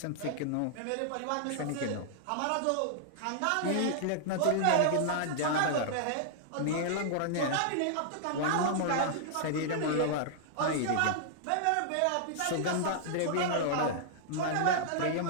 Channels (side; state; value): both; different; correlation -0.01